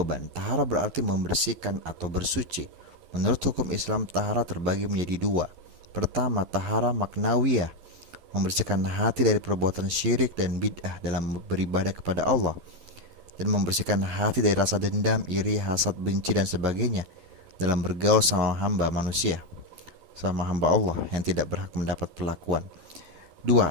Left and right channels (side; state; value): left; late; 12 ms